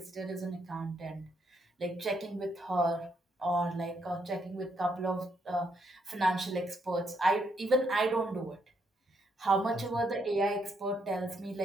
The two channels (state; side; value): normal; both; correlation 0.75